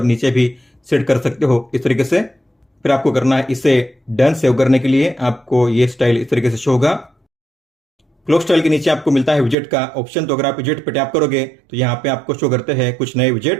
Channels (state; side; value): drops out; left; at 9.6 s